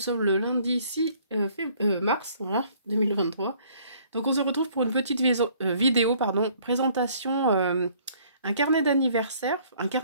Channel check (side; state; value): both; inverted; correlation -0.60